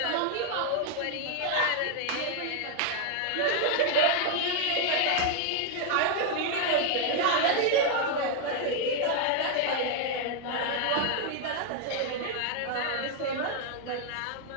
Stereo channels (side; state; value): both; different; correlation 0.00